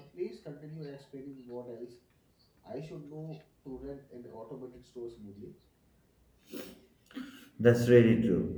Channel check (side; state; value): both; identical; correlation 1.00